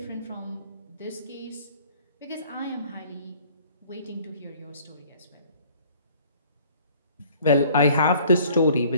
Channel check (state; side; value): inverted; both; correlation -0.55